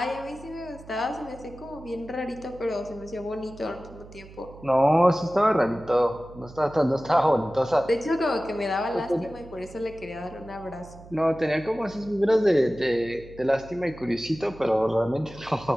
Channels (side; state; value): right; noise; hum, 19 dB below the sound